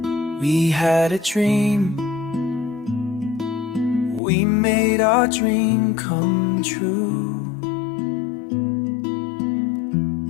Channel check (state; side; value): drops out; right; at 4.2 s